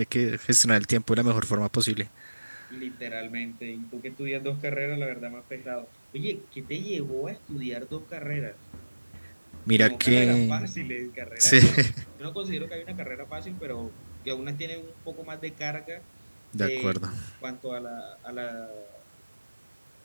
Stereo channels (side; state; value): both; inverted; correlation -1.00